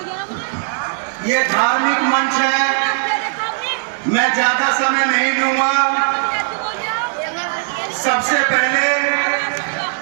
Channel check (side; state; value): left; silent; 67 dB below the other